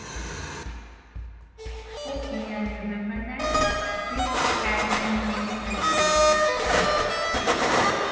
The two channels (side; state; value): both; identical; correlation 1.00